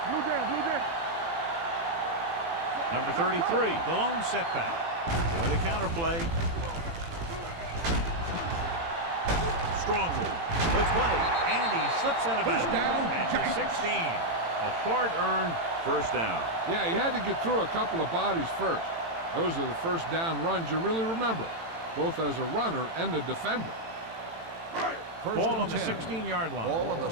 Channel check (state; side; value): late; left; 18 ms